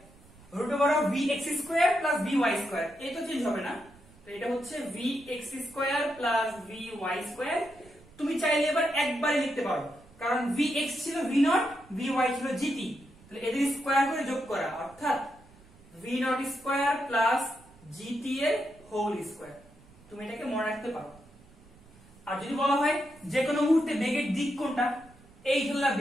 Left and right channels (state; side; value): noise; right; rumble, 25 dB below the sound